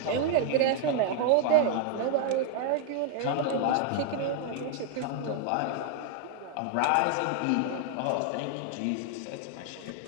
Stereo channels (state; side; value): different; both; correlation 0.00